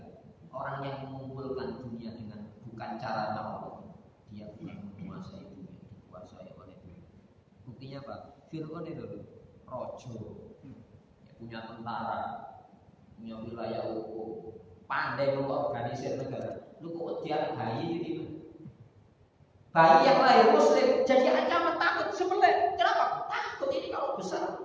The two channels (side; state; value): both; identical; correlation 1.00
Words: Orang yang mengumpulkan dunia dengan bukan cara Allah, dia bukan menguasai dunia, dikuasai oleh dunia. Buktinya apa? Fir'aun itu rojo, ya, punya tentara, punya wilayah hukum, pandai mengorganisir negara. Lu kok dia bayi gitu? Bayi yang lahir Muslim jadi ancaman takut sebelah. Kenapa? Takut ini kalau